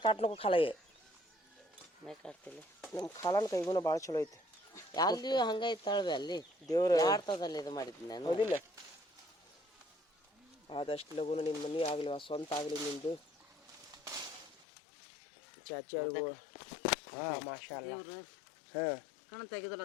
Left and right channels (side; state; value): right; drops out; at 14.7 s